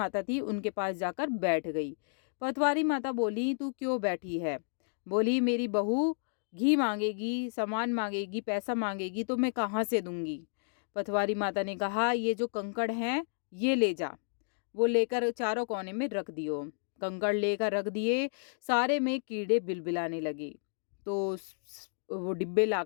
थी उनके पास जाकर बैठ गई। पटवारी माता बोली तू क्यों बैठी है? बोली मेरी बहू घी मांगेगी, सामान मांगेगी, पैसा मांगेगी तो मैं कहाँ से दूंगी? पटवारी माता ने कहा ये जो कंकड़ हैं ये ले जा। वो लेकर चारों कोने में रख दियो। कंकड़ लेकर रख दिए। सारे में कीड़े बिलबिलाने लगे। तो वो डिब्बे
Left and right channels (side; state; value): right; silent; digital silence